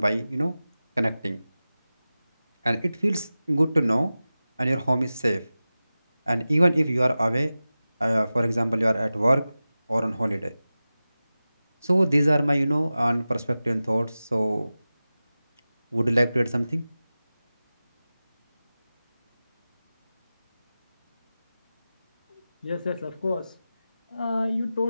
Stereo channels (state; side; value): inverted; both; correlation -0.96